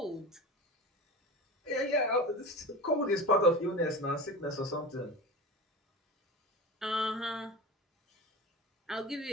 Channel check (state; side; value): normal; both; correlation 0.30